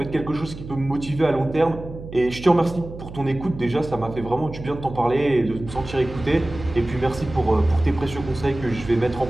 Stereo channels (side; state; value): right; noise; hum, 12 dB below the sound